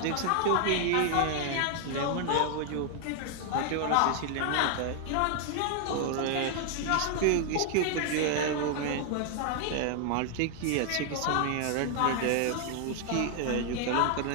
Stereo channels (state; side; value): different; both; correlation 0.00